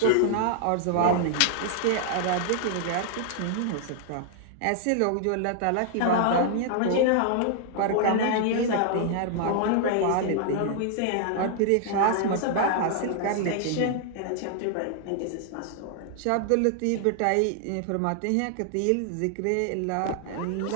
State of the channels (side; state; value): both; different; correlation -0.01